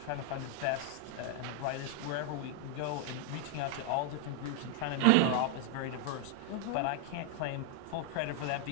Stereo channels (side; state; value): both; different; correlation 0.00